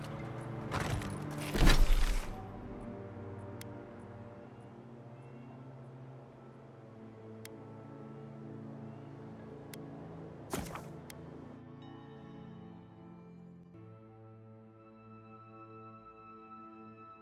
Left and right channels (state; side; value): identical; both; correlation 1.00